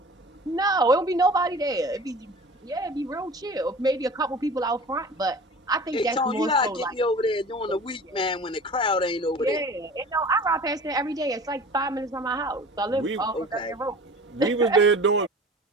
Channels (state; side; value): normal; both; correlation 0.41